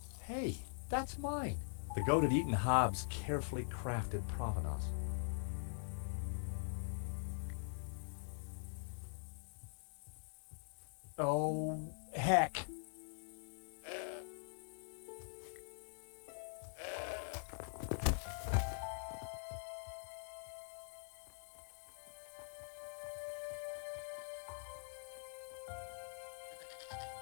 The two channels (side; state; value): right; silent; digital silence